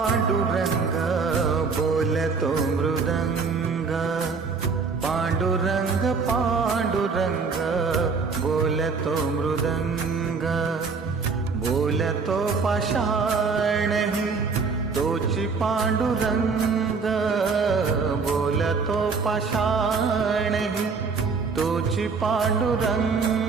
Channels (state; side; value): quieter; left; 4.9 dB